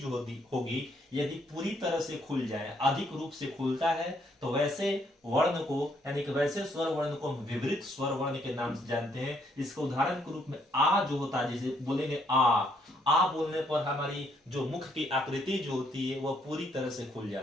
होगी यदि पूरी तरह से खुल जाए, अधिक रूप से खुलता है, तो वैसे वर्ण को यानी कि वैसे स्वर वर्ण को हम विवृत स्वर वर्ण के नाम से जानते हैं। इसके उदाहरण के रूप में आ जो होता है, जैसे बोलेंगे आ बोलने पर हमारी जो मुख की आकृति जो होती है वह पूरी तरह से खुल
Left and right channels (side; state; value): both; normal; correlation 0.71